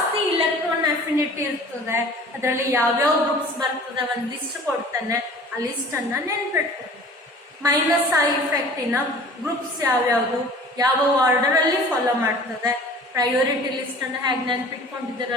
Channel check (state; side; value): normal; both; correlation 0.45